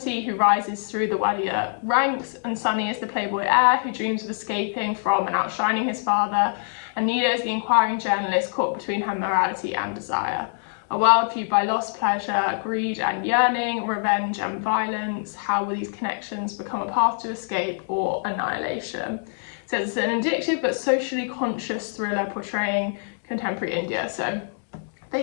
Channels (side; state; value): right; silent; digital silence